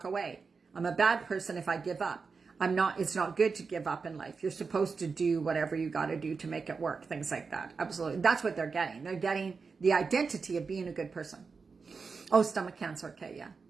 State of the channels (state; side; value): quieter; left; 4.9 dB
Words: away. I'm a bad person if I give up. It's not good to give up in life. You're supposed to do whatever you got to do to make it work. Things like that. Absolutely. That's what they're getting. They're getting the identity of being a good person. Oh, stomach cancer. Okay, yeah.